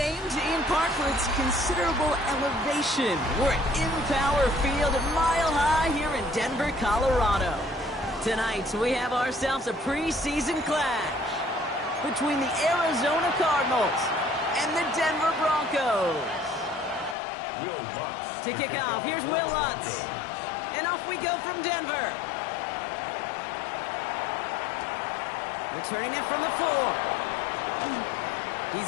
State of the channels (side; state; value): right; drops out; at 17.2 s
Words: Ian Park for its considerable elevation. We're at Empower Field, Mile High here in Denver, Colorado. Tonight, we have ourselves a preseason clash between the Arizona Cardinals and the Denver Broncos. Will Lutz To kick off, here's Will Lutz. And off we go from Denver. Returning it from the 4.